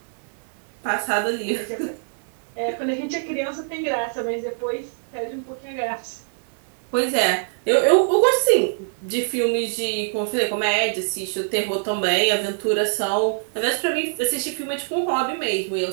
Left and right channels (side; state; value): left; silent; digital silence